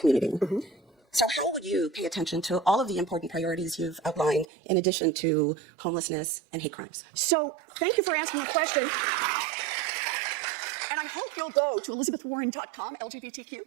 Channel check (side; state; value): left; drops out; at 4.5 s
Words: So how would you pay attention to all of the important priorities you've outlined in addition to homelessness and hate crimes? So thank you for asking the question. And I hope you'll go to elizabethwarren.com, LGBTQ,